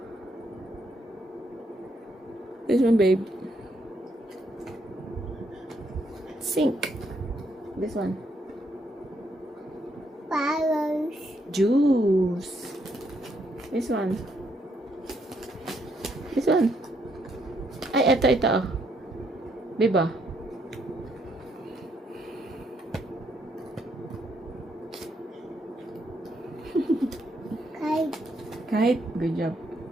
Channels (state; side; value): normal; both; correlation 0.74